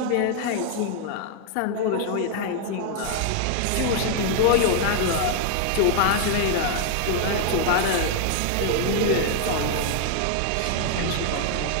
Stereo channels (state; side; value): different; both; correlation 0.00